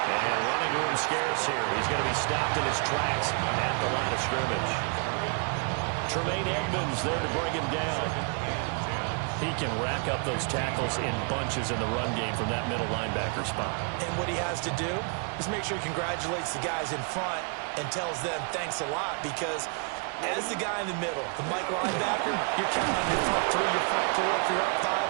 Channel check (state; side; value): quieter; left; 39.2 dB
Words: And running room scarce here. He's going to be stopped in his tracks at the line of scrimmage. Tremaine Edmonds there to bring him down. He can rack up those tackles in bunches in the run game from that middle linebacker spot. And what he has to do is make sure he congratulates the guys in front and tells them thanks a lot, because as the guy in the middle, the Mike linebacker, you're counting on your front 3, your front 4, if you're up